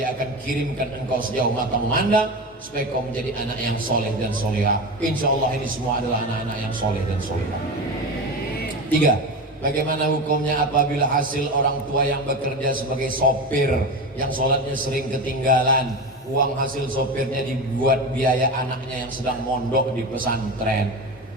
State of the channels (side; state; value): both; normal; correlation 0.24